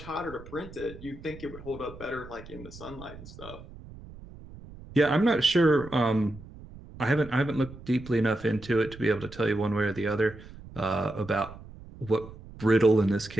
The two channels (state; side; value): noise; right; rumble, 17 dB below the sound